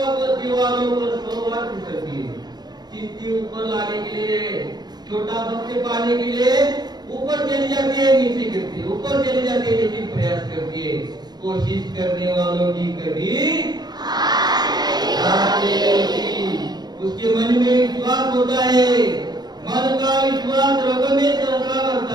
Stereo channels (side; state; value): left; late; 0.20 ms